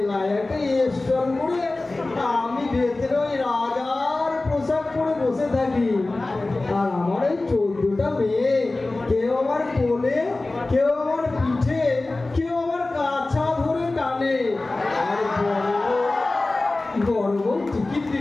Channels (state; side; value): quieter; right; 3.1 dB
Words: একটা স্টল করে আমি ভেতরে ওই রাজার পোশাক পরে বসে থাকি। আর আমার এই 14টা মেয়ে, কেউ আমার কোলে, কেউ আমার পিঠে, কেউ আমার কাছা ধরে টানে। আর বড় বউ টিকিট